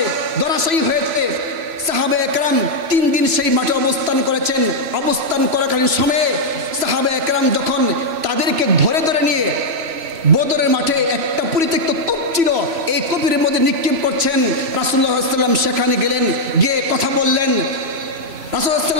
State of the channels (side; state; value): left; late; 3.0 ms